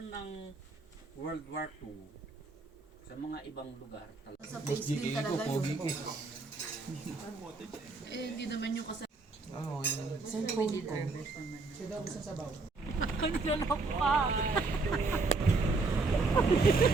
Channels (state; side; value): quieter; left; 3.8 dB